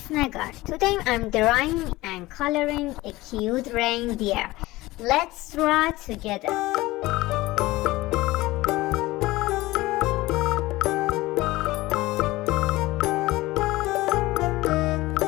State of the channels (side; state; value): right; quieter; 19.2 dB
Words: Negar. Today I'm drawing and coloring a cute reindeer. Let's draw together.